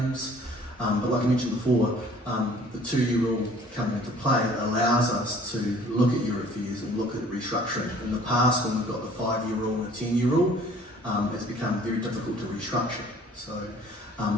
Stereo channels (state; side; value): normal; both; correlation 0.53